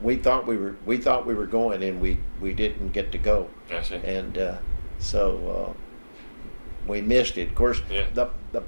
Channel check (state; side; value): inverted; both; correlation -1.00